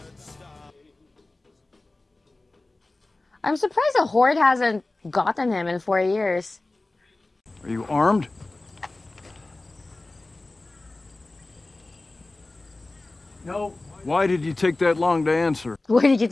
I'm surprised the Horde hasn't gotten him in 4 years. Are you armed? No. Why did you take that long to answer? Where did you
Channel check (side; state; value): right; quieter; 3.0 dB